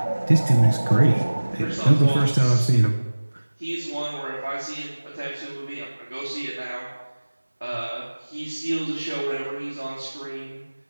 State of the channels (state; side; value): inverted; both; correlation -1.00